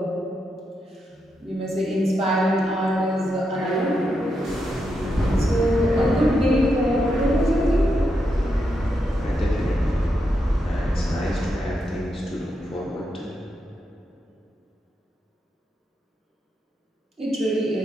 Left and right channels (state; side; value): normal; both; correlation 0.84